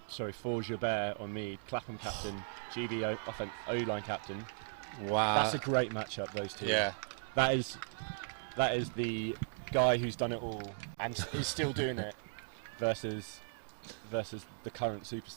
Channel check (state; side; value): silent; left; digital silence